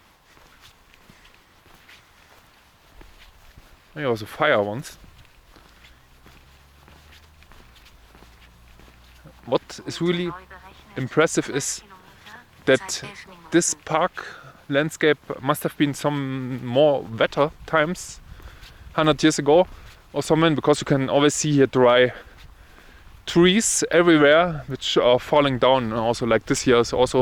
There was a fire once. What is really impressive is that this park landscape must have been some more wetter times 100 years ago or something, because you can always see here dry trees everywhere which are falling down. And also like this here is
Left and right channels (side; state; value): both; identical; correlation 1.00